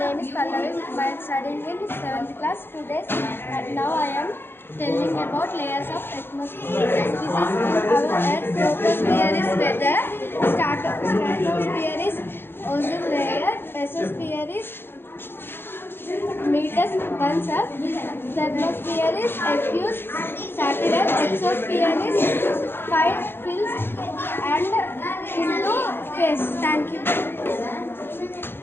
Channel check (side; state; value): right; late; 0.10 ms